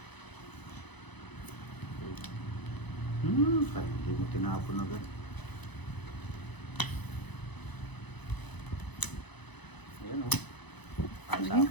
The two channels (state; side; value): late; right; 1.0 ms